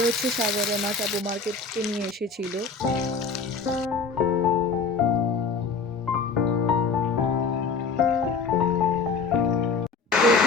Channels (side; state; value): right; quieter; 4.7 dB